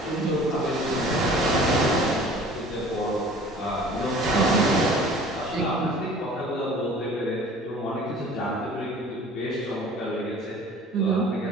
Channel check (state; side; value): normal; both; correlation 0.47